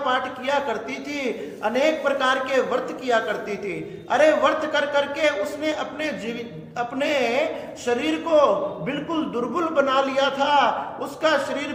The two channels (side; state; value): both; identical; correlation 1.00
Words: किया करती थी, अनेक प्रकार के व्रत किया करती थी। अरे व्रत कर करके उसने अपने शरीर को बिल्कुल दुर्बल बना लिया था, उसका शरीर